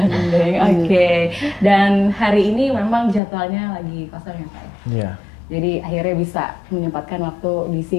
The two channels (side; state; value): right; drops out; at 3.2 s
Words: oke. Dan hari ini memang jadwalnya lagi kosong ya Pak ya? Iya. Jadi akhirnya bisa menyempatkan waktu di